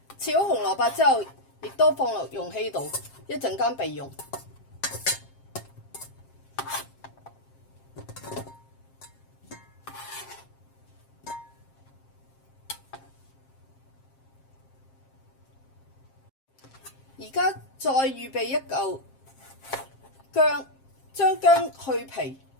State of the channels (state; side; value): late; right; 7.5 ms